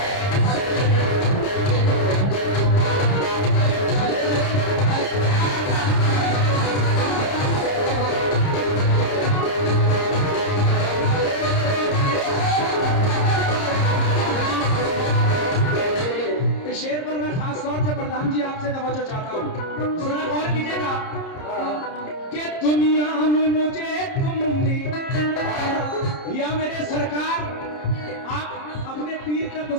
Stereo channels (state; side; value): late; right; 30 ms